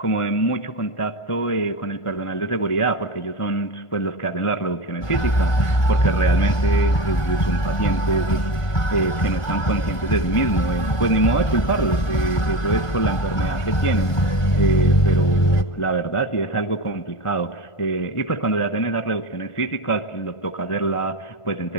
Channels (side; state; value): right; late; 1.5 ms